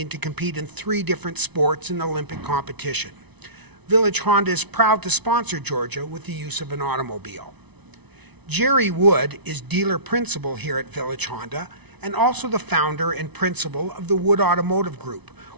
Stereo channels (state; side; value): late; left; 0.99 ms